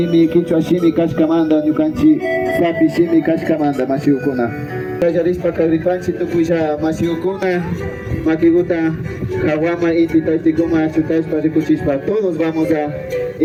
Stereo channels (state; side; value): identical; both; correlation 1.00